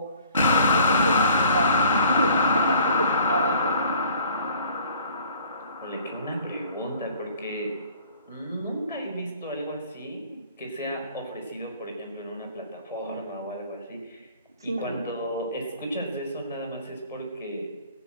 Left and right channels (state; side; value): inverted; both; correlation -0.53